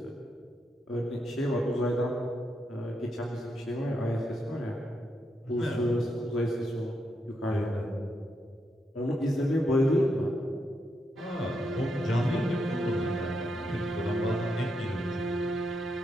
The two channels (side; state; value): both; normal; correlation 0.81